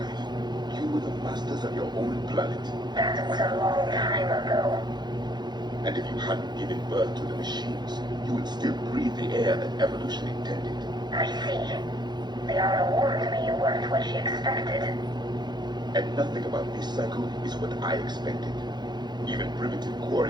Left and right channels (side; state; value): left; late; 0.21 ms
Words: You were the masters of your own planet. That was a long time ago. And if you hadn't given birth to the machines, you would still breathe the air that evolution intended. I see. Liara warned me you weren't what she expected. And nothing about this cycle is what I expected. Even primitive